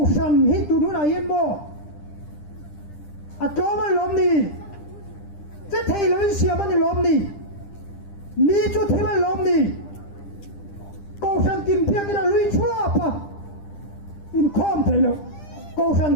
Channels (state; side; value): late; right; 10 ms